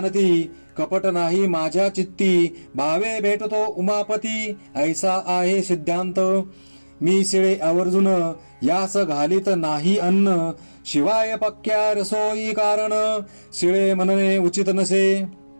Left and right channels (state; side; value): inverted; both; correlation -1.00